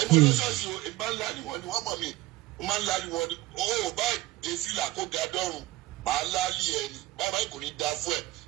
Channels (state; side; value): quieter; left; 18.0 dB